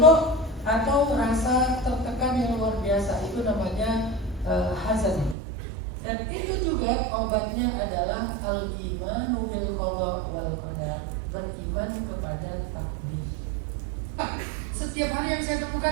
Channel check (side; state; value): left; drops out; at 5.4 s